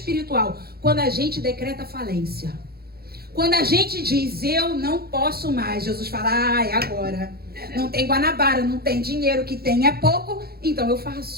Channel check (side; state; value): left; late; 0.45 ms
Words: Quando a gente decreta falência. Quando a gente diz, eu não posso mais, Jesus fala, é agora. Não tem Guanabara, não tem dinheiro, que tem é pouco, então eu